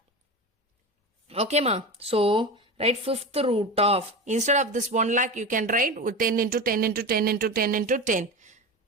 Okay, ma. So write fifth root of. Instead of this 1 lakh, you can write 10 into 10 into 10 into 10 into 10.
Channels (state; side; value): normal; both; correlation 0.25